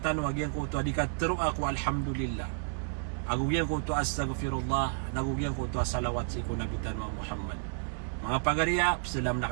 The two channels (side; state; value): left; silent; digital silence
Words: tanwag yang ko to adikat tero ako alhamdulillah. Agugyan ko to astaghfirullah, nagugyan ko to salawat si ko nabitan wa Muhammad. Mga pagariya, salam